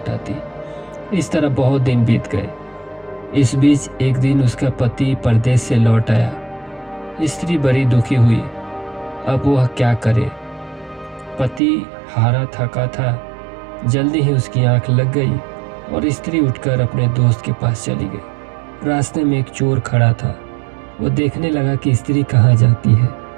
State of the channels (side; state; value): left; drops out; at 11.6 s